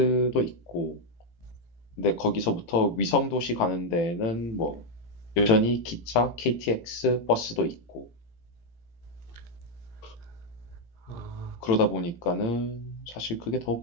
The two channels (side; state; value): right; late; 17 ms